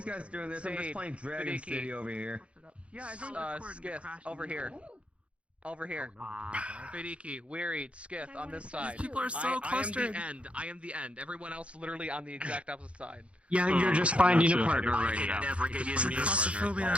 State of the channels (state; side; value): late; left; 0.061 ms